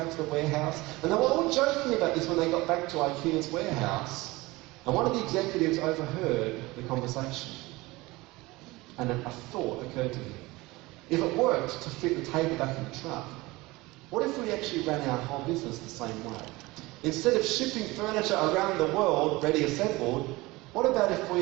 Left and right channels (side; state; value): left; quieter; 21.3 dB